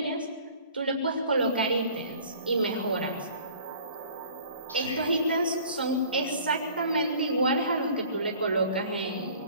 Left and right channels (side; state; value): both; inverted; correlation -0.49